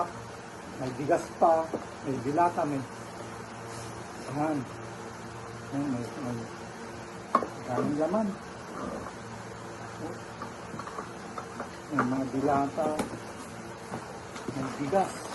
may bigas pa, may dilata, may yan. May daming laman. May mga dilata, may bigas.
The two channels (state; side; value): identical; both; correlation 1.00